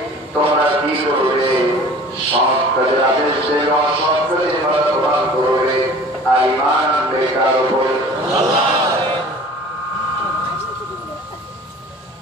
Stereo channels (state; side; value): normal; both; correlation 0.45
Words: তোমরা কি করবে? সৎ কাজের আদেশ দেবে, অসৎ কাজের বাধা প্রদান করবে, আর ঈমান আনবে কার উপর?